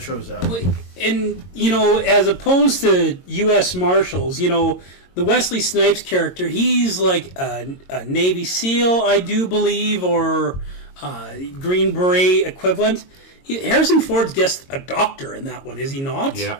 that one. And, as opposed to U.S. Marshals, the Wesley Snipes character, he's like a Navy SEAL, I do believe, or Green Beret equivalent. Harrison Ford's just a doctor in that one, is he not?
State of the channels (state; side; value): late; right; 22 ms